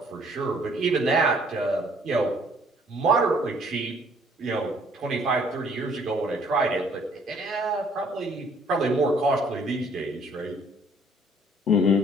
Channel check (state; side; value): normal; both; correlation 0.61